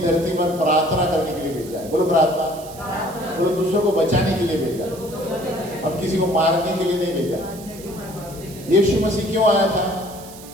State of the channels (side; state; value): right; noise; hiss, 18 dB below the sound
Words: धरती पर प्रार्थना करने के लिए भेजा है। बोलो प्रार्थना। बोलो दूसरों को बचाने के लिए भेजा। हम किसी को मारने के लिए नहीं भेजा। यीशु मसीह क्यों आया था?